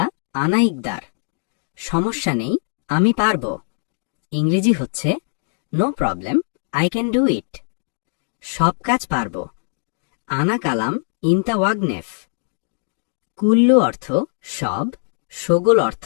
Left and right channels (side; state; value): right; silent; digital silence